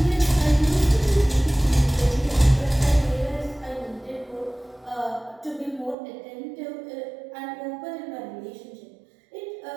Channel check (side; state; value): left; drops out; at 6.0 s